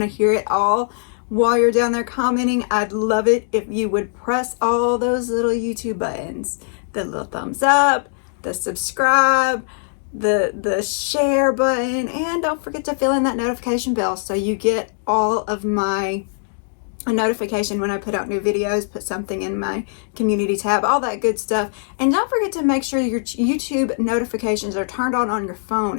to hear it all. While you're down there commenting, I'd love it if you would press all those little YouTube buttons. The little thumbs up, the subscribe, the share button, and don't forget to fill in that notification bell so you get all of my a notification when I put out new videos, put something in my community tab, all that good stuff. And don't forget to make sure your YouTube notifications are turned on your phone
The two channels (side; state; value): right; silent; digital silence